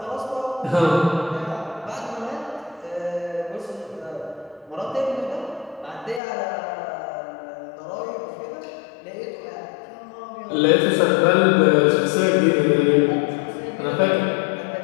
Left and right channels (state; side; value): drops out; right; at 6.2 s